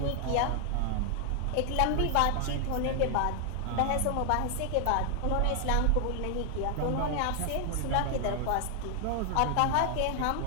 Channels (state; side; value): different; both; correlation 0.00